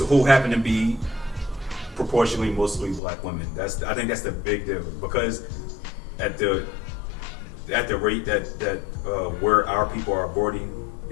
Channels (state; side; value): drops out; right; at 3.0 s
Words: Who happen to be proportionally mostly black women. I think that's the big deal, because at the rate that where our people are aborting,